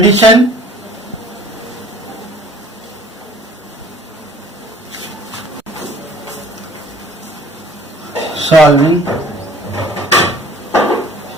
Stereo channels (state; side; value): normal; both; correlation 0.52